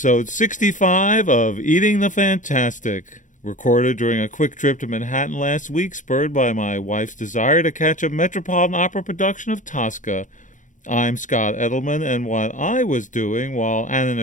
65 of Eating the Fantastic, recorded during a quick trip to Manhattan last week, spurred by my wife's desire to catch a Metropolitan Opera production of Tosca. I'm Scott Edelman, and what I was doing while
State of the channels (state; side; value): late; right; 0.37 ms